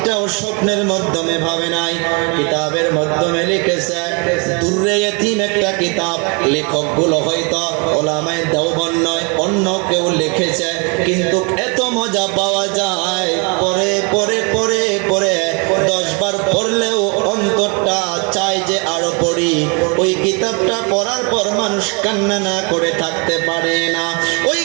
স্বপ্নের মাধ্যমে ভাবে নাই, কিতাবের মাধ্যমে লিখেছে। দুররে ইতিম একটা কিতাব, লেখকগুলো হয়তো ওলামায়ে দেওবন্দ নয়, অন্য কেউ লিখেছে, কিন্তু এত মজা পাওয়া যায়, পরে পরে পরে পরে 10 বার পড়লেও অন্তরটা চায় যে আরো পড়ি। ওই কিতাবটা পড়ার পর মানুষ কান্না না করে থাকতে পারে না। ওই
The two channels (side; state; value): left; quieter; 33.1 dB